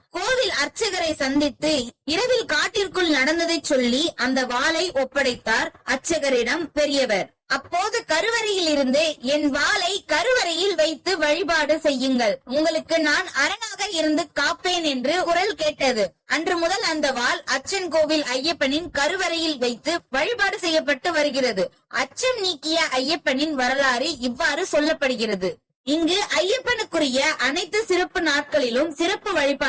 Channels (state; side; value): identical; both; correlation 1.00